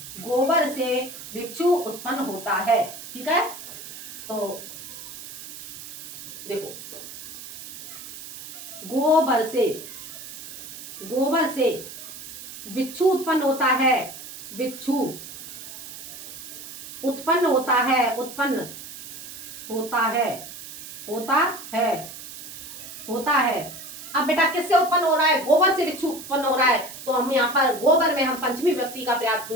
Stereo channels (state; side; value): noise; right; hiss, 12 dB below the sound